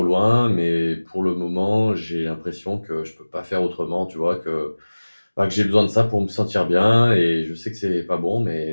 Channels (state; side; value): inverted; both; correlation -1.00